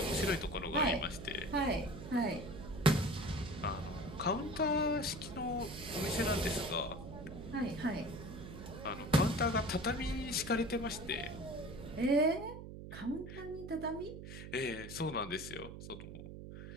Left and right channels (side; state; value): right; noise; hum, 11 dB below the sound